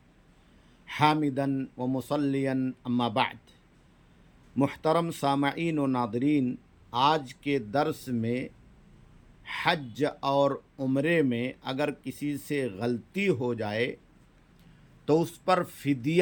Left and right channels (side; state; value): both; identical; correlation 1.00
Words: حامدن و مصلیًا اما بعد۔ محترم سامعین و ناظرین، آج کے درس میں حج اور عمرے میں اگر کسی سے غلطی ہو جائے تو اس پر